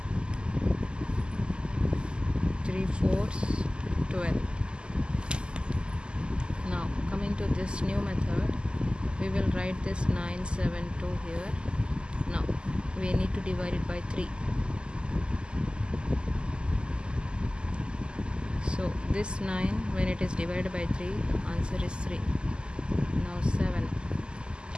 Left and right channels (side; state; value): left; late; 0.049 ms